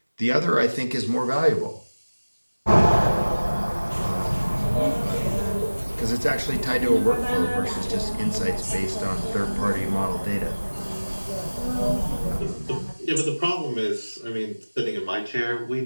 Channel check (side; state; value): both; inverted; correlation -1.00